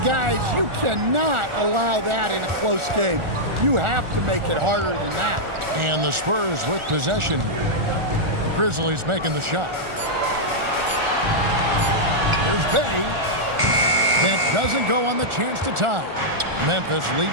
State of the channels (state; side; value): late; left; 1.4 ms